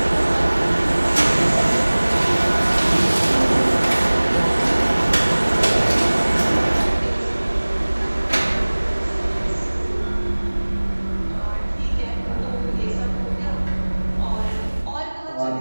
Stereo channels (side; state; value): both; inverted; correlation -1.00